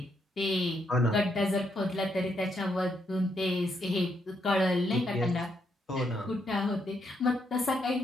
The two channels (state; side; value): normal; both; correlation 0.77